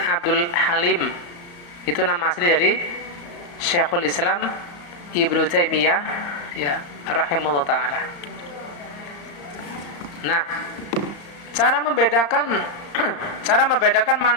Halim. Itu nama asli dari Syekhul Islam Ibnu Taimiyah, ya, rahimahullah ta'ala. Nah, cara membedakan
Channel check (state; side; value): late; right; 34 ms